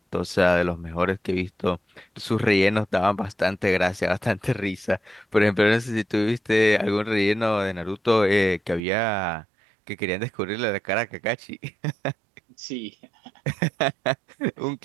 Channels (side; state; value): left; drops out; at 8.8 s